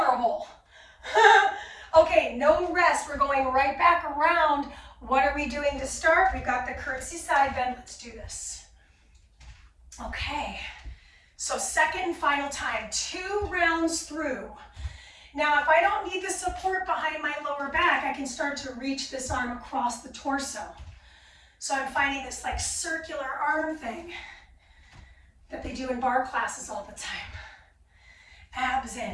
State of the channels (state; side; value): identical; both; correlation 1.00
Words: Okay, no rest. We're going right back around. What are we doing to start? We've got the curtsy side bend. Let's do this. Okay, so second and final time, 2 rounds through. Now, if I don't need the support behind my lower back, I can start to reach this arm across the torso. So I'm finding this like circular arm thing that they do in bar classes all the time. Abs